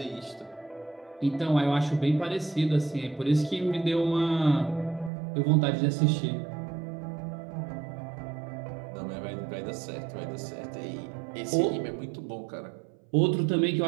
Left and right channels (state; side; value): drops out; left; at 5.1 s